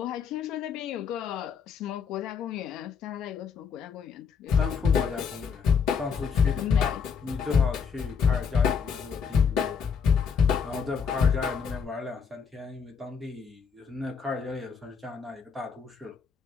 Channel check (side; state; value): right; quieter; 6.2 dB